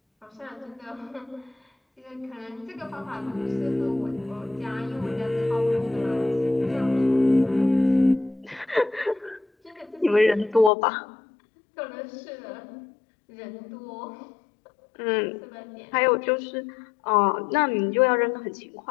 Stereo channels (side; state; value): right; drops out; at 10.7 s